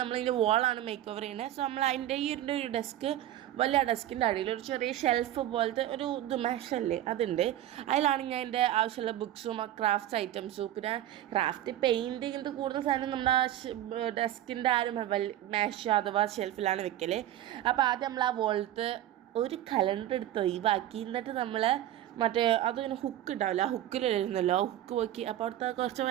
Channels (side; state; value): left; quieter; 12.8 dB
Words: നമ്മൾ ഇതിൻ്റെ വോളാണ് മേക്ക് ഓവർ ചെയ്യുന്നത്. സോ നമ്മൾ അതിൻ്റെ ഒരു ഡെസ്ക് വലിയ ഡെസ്കിൻ്റെ അടിയിൽ ഒരു ചെറിയ ഷെൽഫ് പോലത്തെ ഒരു മെഷല്ലേ അതുണ്ട്. അതിലാണ് ഞാൻ എൻ്റെ ആവശ്യമുള്ള ബുക്സും ക്രാഫ്റ്റ്സ് ഐറ്റംസും പിന്നെ ക്രാഫ്റ്റ് പെയിൻറ്റ് ഇങ്ങനത്തെ കൂടുതൽ സാധനം നമ്മുടെ ഡെസ്കിൻ്റെ മേശ അഥവാ ഷെൽഫിലാണ് വെക്കൽ. അപ്പോൾ ആദ്യം നമ്മൾ ആ വോളത്ത് ഒരു കലണ്ടർ എടുത്ത് ഒഴിവാക്കി എന്നിട്ട് നമ്മൾ മറ്റേ അതിങ്ങനെ ഹുക്ക് ഉണ്ടാവില്ല, ആ ഹുക്കിലിരുന്നല്ലോ, ആ ഹുക്ക് പോക്കി. അപ്പോൾ അവിടുത്തെ കുറച്ച്